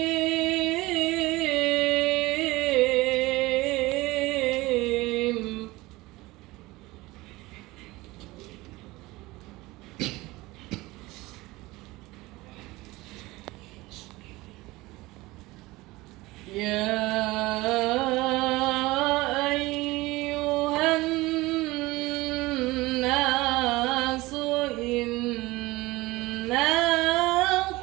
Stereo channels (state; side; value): quieter; left; 20.4 dB